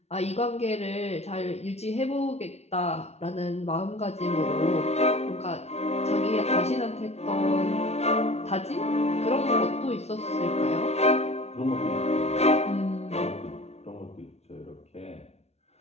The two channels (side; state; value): right; late; 0.31 ms